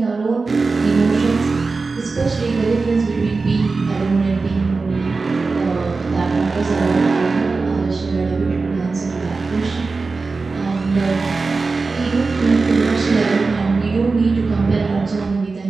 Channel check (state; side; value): quieter; left; 4.1 dB